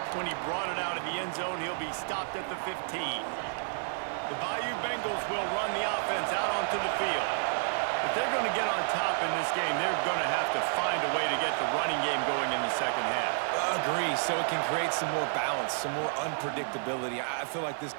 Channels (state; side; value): silent; left; digital silence